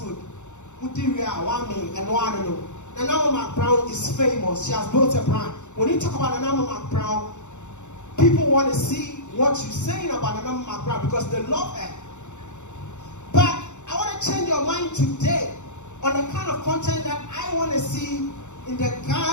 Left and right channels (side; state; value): right; late; 0.84 ms